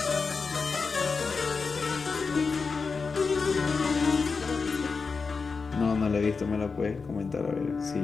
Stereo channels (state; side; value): quieter; right; 4.8 dB